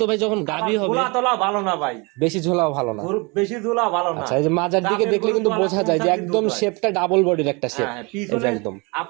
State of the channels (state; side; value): quieter; left; 28.7 dB